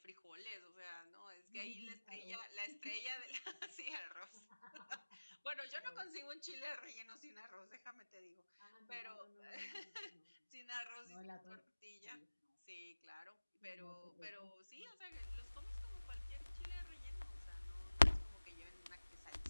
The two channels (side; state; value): both; inverted; correlation -1.00